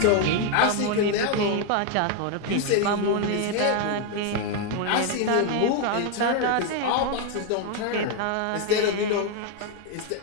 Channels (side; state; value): both; different; correlation 0.01